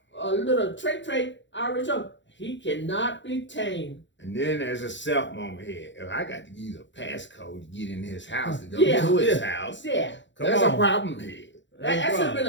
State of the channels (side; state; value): right; late; 0.54 ms